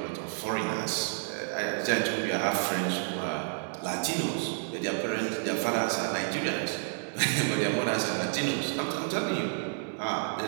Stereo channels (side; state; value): left; silent; 58 dB below the other